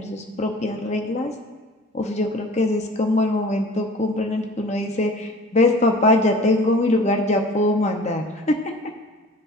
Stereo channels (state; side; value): normal; both; correlation 0.44